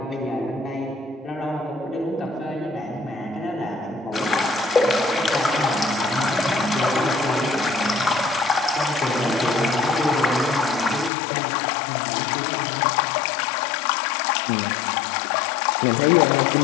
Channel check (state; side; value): drops out; right; at 11.1 s